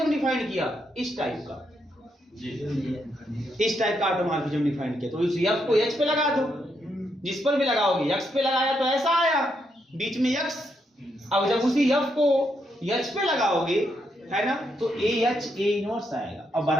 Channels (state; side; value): normal; both; correlation 0.79